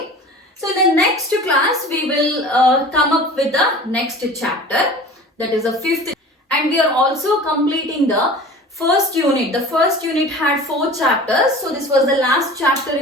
So in the next class we will come up with the next chapter, that is the 5th, and we are also completing the first unit. The first unit had 4 chapters, so this was the last chapter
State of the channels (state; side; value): normal; both; correlation 0.39